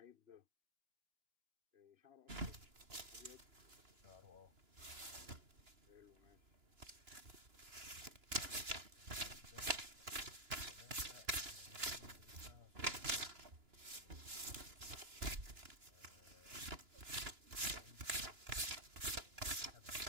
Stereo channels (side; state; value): left; late; 2.9 ms